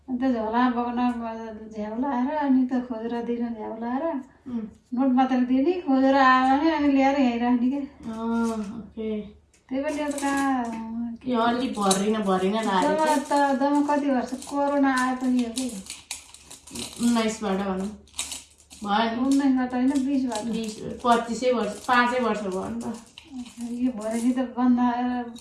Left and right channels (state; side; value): identical; both; correlation 1.00